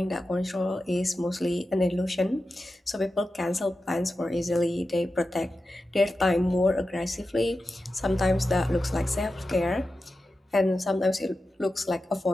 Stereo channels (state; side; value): normal; both; correlation 0.92